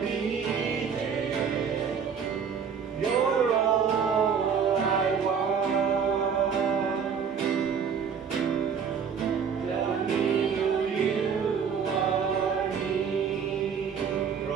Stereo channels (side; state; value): left; quieter; 6.8 dB